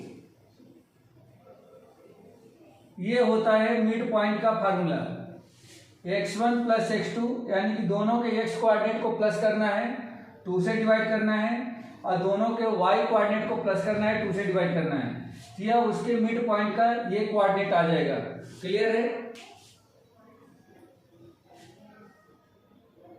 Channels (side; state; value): both; identical; correlation 1.00